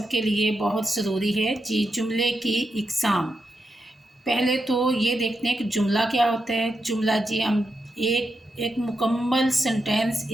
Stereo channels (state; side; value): normal; both; correlation 0.86